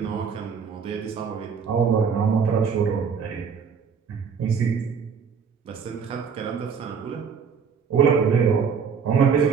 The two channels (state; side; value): quieter; left; 6.3 dB